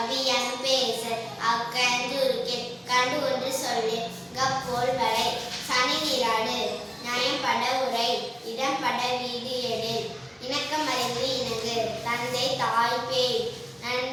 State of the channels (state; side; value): identical; both; correlation 1.00